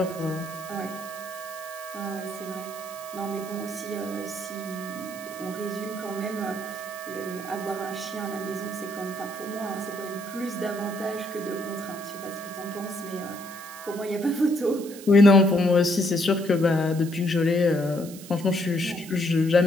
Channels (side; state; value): right; noise; hiss, 16 dB below the sound